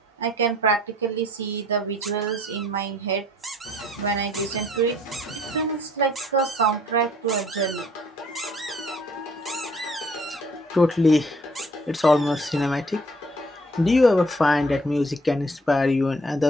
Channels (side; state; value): both; normal; correlation 0.59